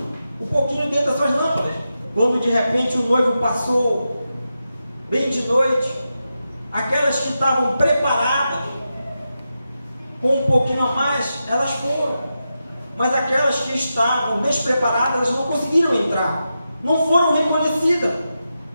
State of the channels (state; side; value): inverted; both; correlation -0.89